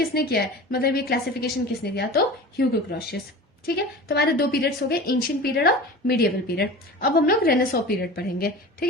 किया है, मतलब ये क्लासिफिकेशन किसने दिया, तो ह्यूगो ग्रोशियस। ठीक है, तो हमारे दो पीरियड्स हो गए, एंशिएंट पीरियड और मिडिएवल पीरियड। अब हम लोग रेनेसॉ पीरियड पढ़ेंगे। ठीक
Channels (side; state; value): both; normal; correlation 0.35